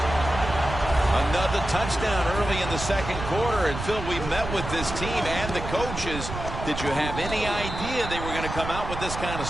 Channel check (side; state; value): right; noise; rumble, 7 dB below the sound